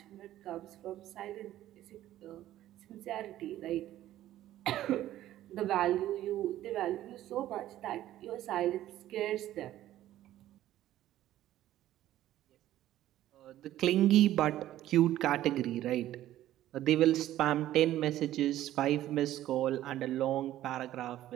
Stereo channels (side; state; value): left; quieter; 13.5 dB